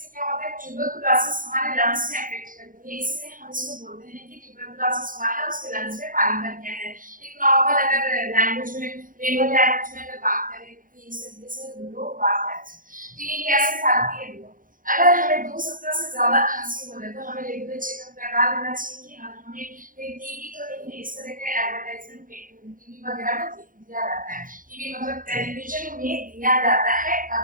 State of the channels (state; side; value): late; left; 0.40 ms